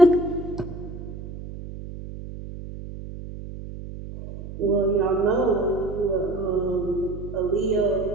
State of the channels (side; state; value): right; noise; hum, 11 dB below the sound